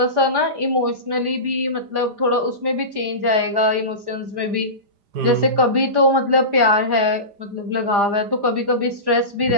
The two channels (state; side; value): late; left; 4.9 ms